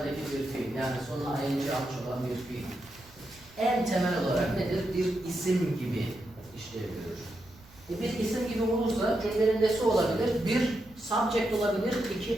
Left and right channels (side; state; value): right; noise; rumble, 25 dB below the sound